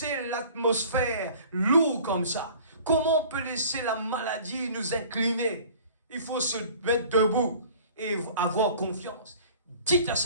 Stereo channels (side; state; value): both; inverted; correlation -0.47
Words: l'atmosphère lourde comme ça? Comment on peut laisser la maladie nous incliner? Il faut se mettre debout et avoir confiance. Dites à